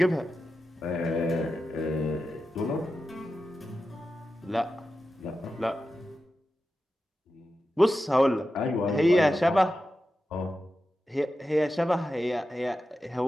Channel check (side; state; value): both; normal; correlation 0.91